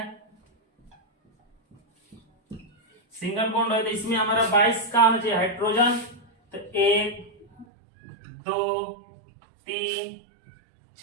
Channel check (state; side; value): drops out; left; at 7.7 s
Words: सिंगल बॉन्ड है तो इसमें हमारा 22 का होना चाहिए हाइड्रोजन। तो 1 2 3